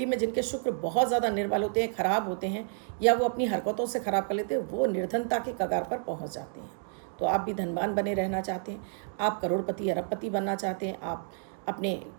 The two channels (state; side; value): silent; left; digital silence